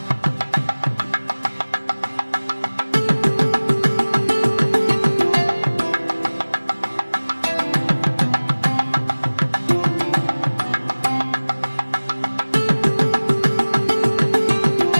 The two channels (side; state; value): both; inverted; correlation -1.00